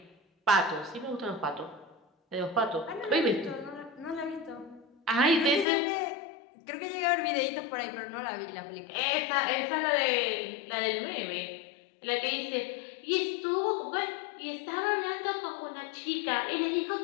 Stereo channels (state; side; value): drops out; right; at 5.7 s